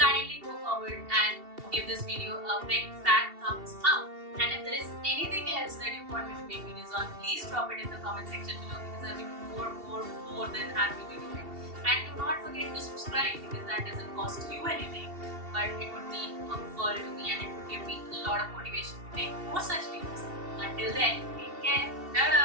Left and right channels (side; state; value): left; late; 2.7 ms